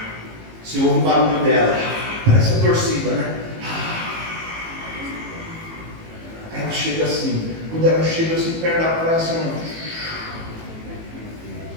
Você ouve o barulho dela, parece a torcida, né? Aí ela chega assim, quando ela chega assim perto da praia, assim,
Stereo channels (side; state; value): left; late; 18 ms